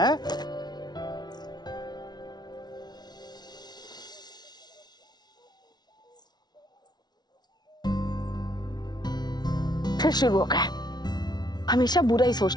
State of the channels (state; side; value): late; right; 0.20 ms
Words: फिर शुरू हो गया, हमेशा बुरा ही